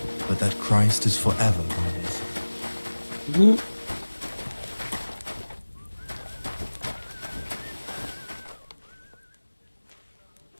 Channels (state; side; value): inverted; both; correlation -1.00